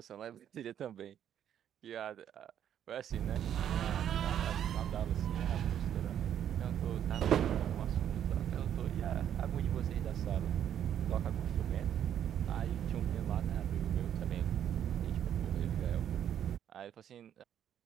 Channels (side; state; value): left; quieter; 9.9 dB